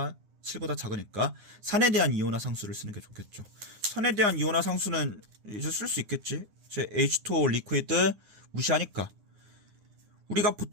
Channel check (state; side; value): late; left; 9.7 ms